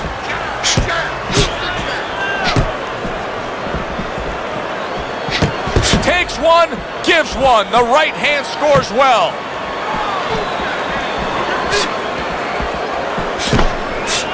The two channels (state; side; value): identical; both; correlation 1.00